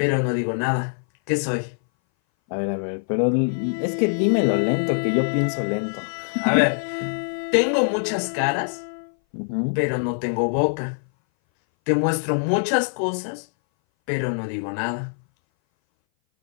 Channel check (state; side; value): silent; right; 60 dB below the other